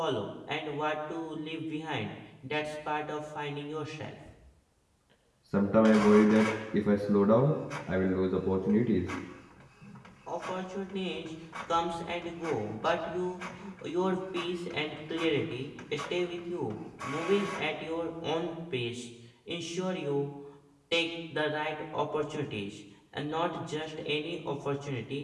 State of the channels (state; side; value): identical; both; correlation 1.00